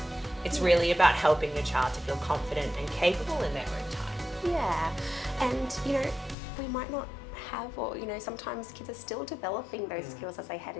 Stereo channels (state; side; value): drops out; right; at 6.4 s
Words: It's really about helping your child to feel confident and capable in their own time. Yeah, and we might not have, or sometimes kids are still developing those skills as they head